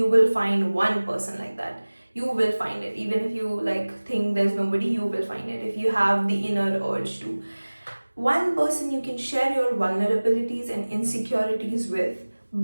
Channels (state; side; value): inverted; both; correlation -1.00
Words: will find one person like that. You will find it. Even if you think there's nobody, you will find it. If you have the inner urge to. One person you can share your vulnerabilities and insecurities with,